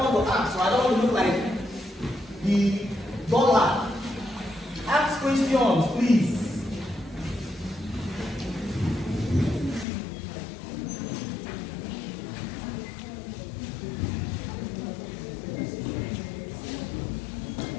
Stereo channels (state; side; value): drops out; right; at 9.9 s